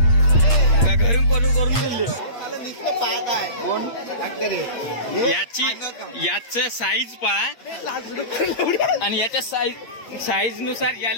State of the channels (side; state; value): right; late; 8.5 ms